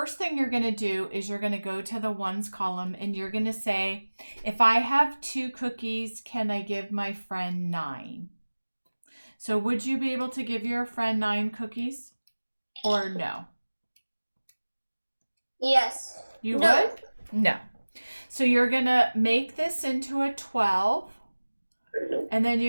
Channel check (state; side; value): inverted; both; correlation -1.00